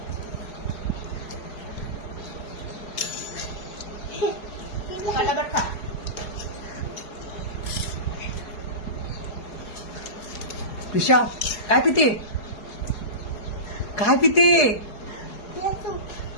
पटापट खा. कृषा काय पिते? काय पिते? तूप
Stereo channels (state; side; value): late; right; 4.8 ms